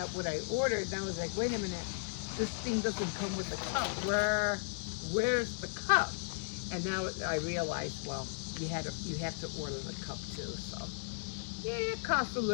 what I ordered, and I was like, wait a minute, this thing doesn't come with a cup. Where's the cup? And now I realized, well, you have to order the cup too. So yeah, it costs a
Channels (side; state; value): right; silent; digital silence